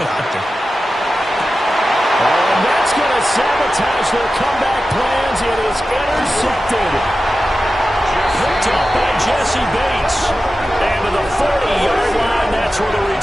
doctor. And that's going to sabotage their comeback plans. It is intercepted. Picked up by Jesse Bates. And to the 40-yard line, that's where the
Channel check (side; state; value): both; normal; correlation 0.93